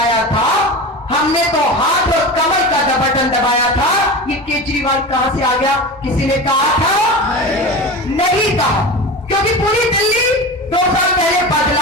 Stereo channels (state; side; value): normal; both; correlation 0.29